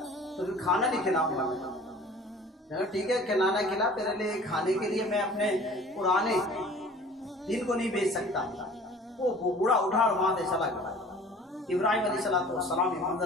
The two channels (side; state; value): both; normal; correlation 0.47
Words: फिर खाना नहीं खिलाऊंगा। ठीक है, खिलाना खिला, तेरे लिए खाने के लिए मैं अपने पुराने दिन को नहीं बेच सकता। वो बूढ़ा उठा और वहां से चला गया। इब्राहिम अलैहिस्सलाम ये